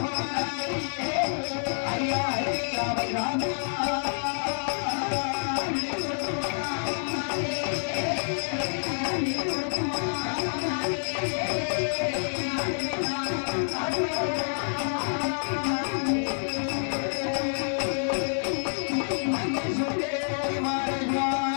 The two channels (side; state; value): right; silent; digital silence